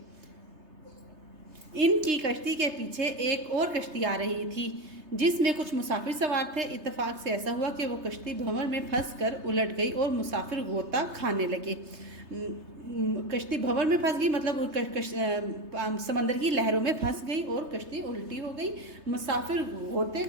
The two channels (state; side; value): late; left; 3.3 ms